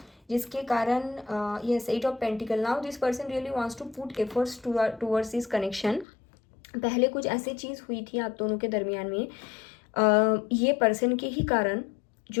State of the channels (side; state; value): right; drops out; at 6.1 s